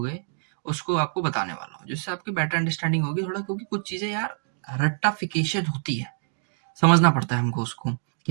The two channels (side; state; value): left; silent; digital silence